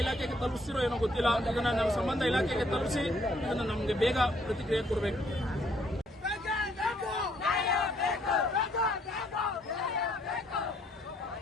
ಇಲಾಖೆಗೆ ತಲುಪಿಸಿರೋ ಏನೋ ಗೊತ್ತಿಲ್ಲ. ಇದನ್ನ ನಮ್ಮ ಸಂಬಂಧ ಇಲಾಖೆಗೆ ತಲುಪಿಸಿ ಇದನ್ನ ನಮಗೆ ಬೇಗ ಪ್ರತಿಕ್ರಿಯೆ ಕೊಡಬೇಕು.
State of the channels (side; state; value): both; normal; correlation 0.67